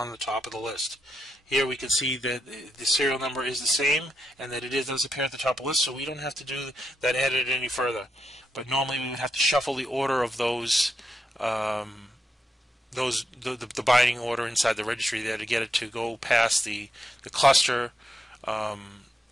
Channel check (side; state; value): both; normal; correlation 0.83